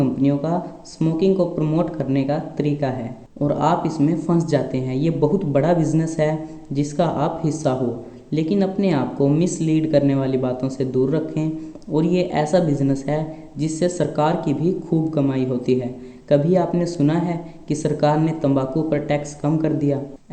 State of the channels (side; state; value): both; identical; correlation 1.00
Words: का स्मोकिंग को प्रमोट करने का तरीका है और आप इसमें फंस जाते हैं। ये बहुत बड़ा बिजनेस है जिसका आप हिस्सा हो, लेकिन अपने आप को मिसलीड करने वाली बातों से दूर रखें। और ये ऐसा बिजनेस है जिससे सरकार की भी खूब कमाई होती है। कभी आपने सुना है कि सरकार ने तंबाकू पर टैक्स कम कर दिया?